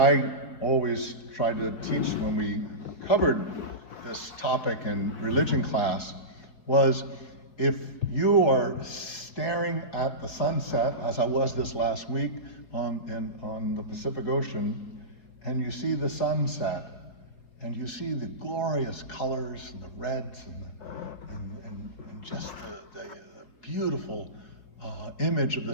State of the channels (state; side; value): late; right; 4.7 ms